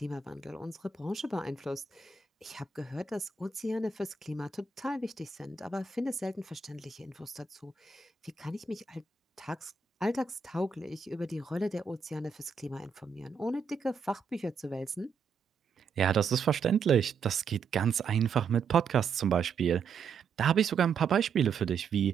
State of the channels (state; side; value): quieter; left; 5.5 dB